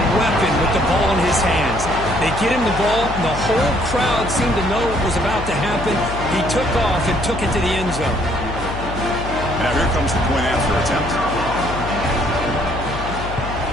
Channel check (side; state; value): left; noise; hum, 8 dB below the sound